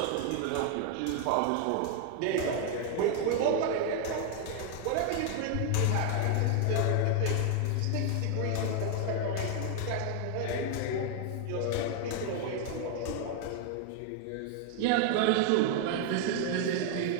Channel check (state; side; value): different; both; correlation 0.00